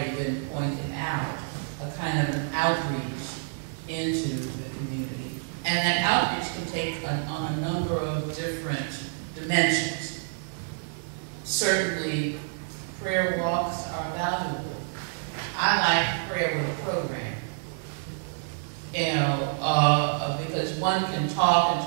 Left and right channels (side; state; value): left; silent; 59 dB below the other